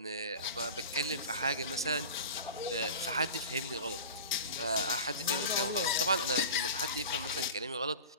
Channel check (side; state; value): both; inverted; correlation -0.35